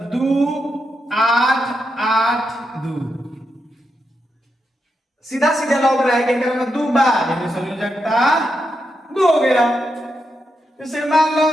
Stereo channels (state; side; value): normal; both; correlation 0.84